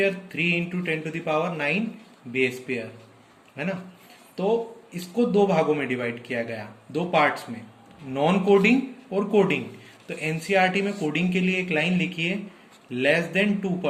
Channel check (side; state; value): both; identical; correlation 1.00